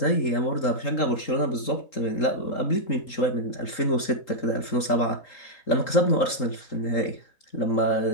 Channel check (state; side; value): late; right; 3.8 ms